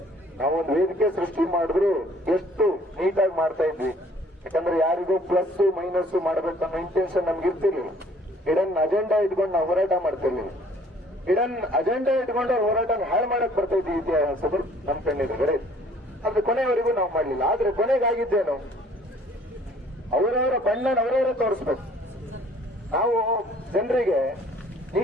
ನಾವೊಂದು ವೇದಿಕೆ ಸೃಷ್ಟಿ ಮಾಡಿದ್ರು ಎಷ್ಟು ನೀಟಾಗಿ ಮಾಡ್ತಾ ಇದ್ವಿ. ಯಾಕಂದ್ರೆ ಯಾರಿಗೂ ಪ್ಲಸ್ ಮೈನಸ್ ಮಾಡ್ಬೇಕನ್ನೋ ಇಂಟೆನ್ಷನ್ ನಮ್ಗೆ ಇರ್ತಿರ್ಲಿಲ್ಲ. ಇಡನ್ ಅಜೆಂಡಾ ಇಟ್ಕೊಂಡು ನಾವು ಹೋರಾಟ ಮಾಡ್ತಿರ್ಲಿಲ್ಲ. ಇಡನ್ ಅಜೆಂಡಾ ಇಟ್ಕೊಂಡು ಹೋರಾಟನ ಹಾಳು ಮಾಡಕ್ ಬರ್ತಾ ಇದ್ವಿ ಇತಿಹಾಸಗಳು ನಮ್ ಕಣ್ಣಿದೆ. ಆದ್ರೆ ಕೊನೆಯವರೆಗೂ ನಾವು ಮಾಡ್ಲಿಲ್ಲ. ಆದ್ರೆ ಕೊನೆಗಾಗಿದ್ದೇನು, ಅವರವರ ಬಣ್ಣನ ಅವರವರೇ ತೋರಿಸ್ಬೇಕು. ನಾವು ಜನರಿಗೆ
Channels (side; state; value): both; normal; correlation 0.57